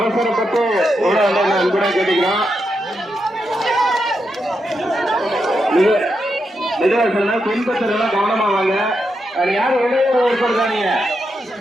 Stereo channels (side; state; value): both; normal; correlation 0.84